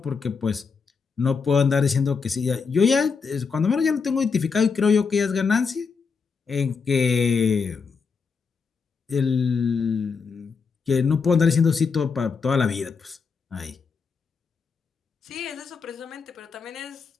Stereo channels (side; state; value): right; quieter; 5.4 dB